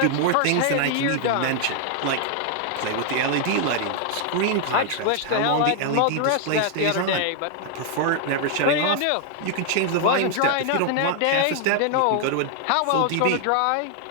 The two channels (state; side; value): different; both; correlation 0.00